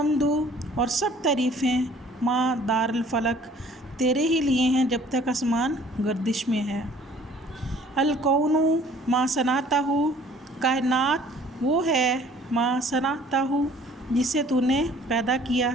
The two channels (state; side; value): normal; both; correlation 0.54